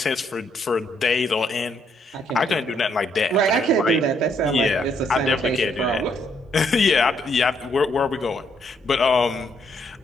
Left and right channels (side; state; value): both; normal; correlation 0.72